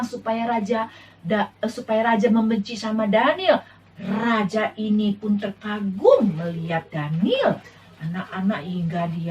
supaya raja membenci sama Daniel. Raja ini pun terkagum melihat Daniel. Anak-anak hingga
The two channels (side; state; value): both; identical; correlation 1.00